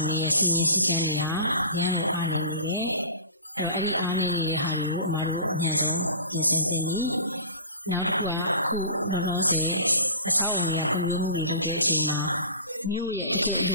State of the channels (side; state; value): both; inverted; correlation -0.39